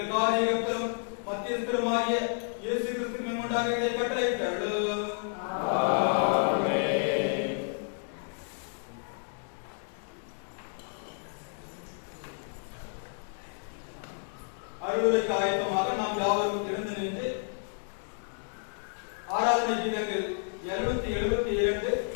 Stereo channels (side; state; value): right; silent; 57 dB below the other